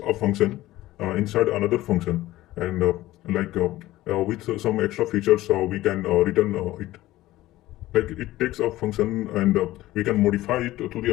a function inside another function, and with some extra features we can return it. Like it takes a function and we can modify it to the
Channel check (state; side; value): quieter; right; 16.3 dB